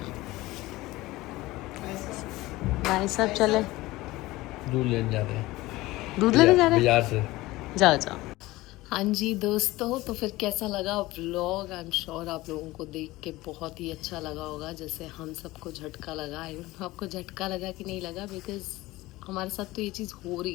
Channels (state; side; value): quieter; right; 19.0 dB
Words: ऐसा. भाई साहब चले दूध लेने जा रहे हैं, दूध लेने जा रहे हैं. बाजार से. जाओ जाओ. हाँ जी दोस्तों, तो फिर कैसा लगा व्लॉग? आई एम श्योर आप लोगों को देख के बहुत ही अच्छा लगा होगा, जैसे हम सबको झटका लगा. आई डोंट नो आपको झटका लगा कि नहीं लगा, बिकॉज हमारे साथ तो ये चीज़ हो